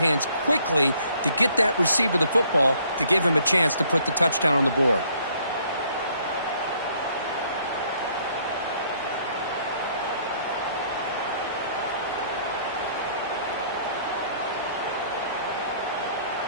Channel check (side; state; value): both; inverted; correlation -0.63